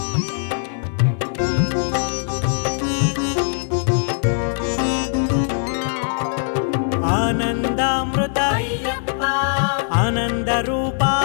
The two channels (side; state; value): right; silent; digital silence